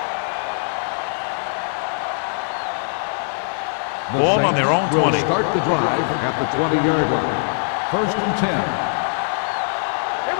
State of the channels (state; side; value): silent; right; digital silence